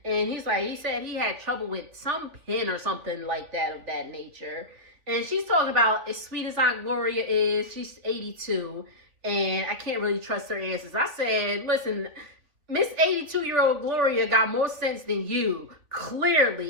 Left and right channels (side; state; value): left; late; 3.2 ms